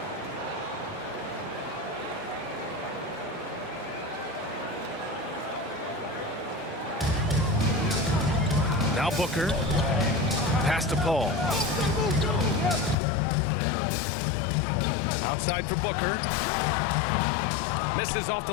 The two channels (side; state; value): right; drops out; at 13.0 s